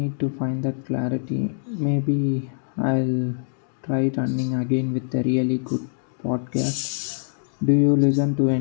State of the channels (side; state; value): right; silent; digital silence